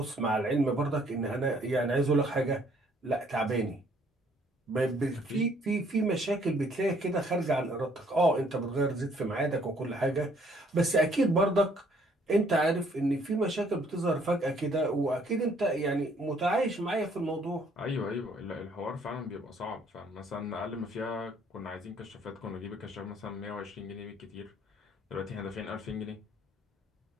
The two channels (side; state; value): both; normal; correlation 0.63